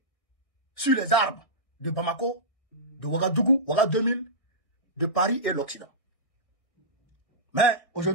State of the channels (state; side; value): late; right; 1.6 ms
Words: sur les arbres de Bamako, de Ouagadougou, Ouagadougou 2000, de Paris et l'Occident. Mais